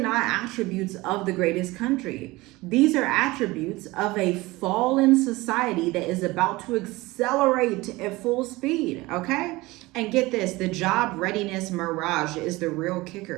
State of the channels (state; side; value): quieter; left; 20.9 dB